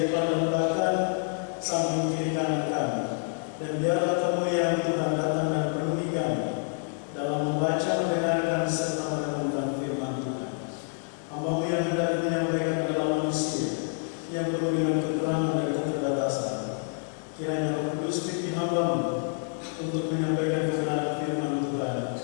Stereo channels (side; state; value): right; silent; 59 dB below the other